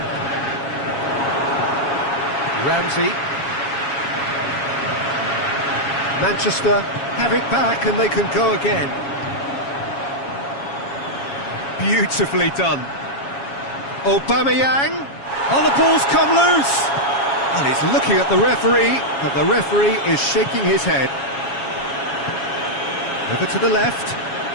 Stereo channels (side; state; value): right; late; 7.2 ms